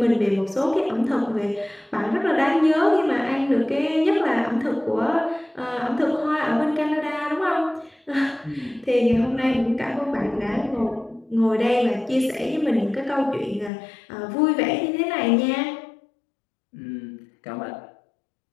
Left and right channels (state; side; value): drops out; right; at 13.7 s